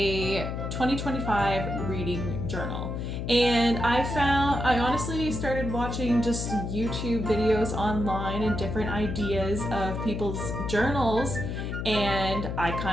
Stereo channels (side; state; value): left; noise; hum, 4 dB below the sound